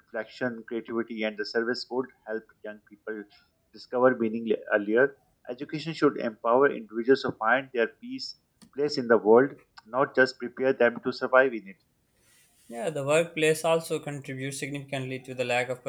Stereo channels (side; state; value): both; identical; correlation 1.00